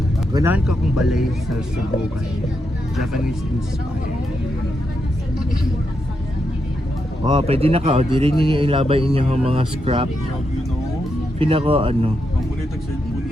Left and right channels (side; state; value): both; normal; correlation 0.83